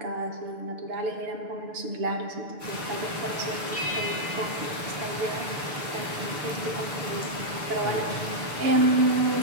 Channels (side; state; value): left; late; 6.8 ms